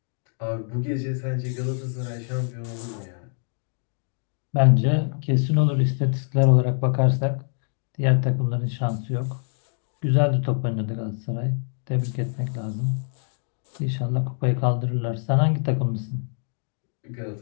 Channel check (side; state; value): right; silent; digital silence